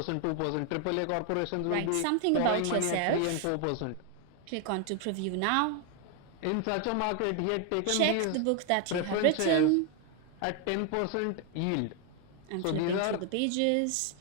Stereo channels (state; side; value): different; both; correlation 0.00